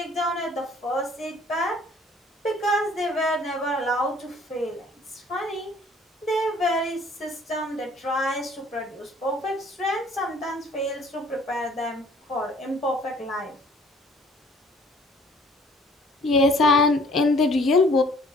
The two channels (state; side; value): normal; both; correlation 0.56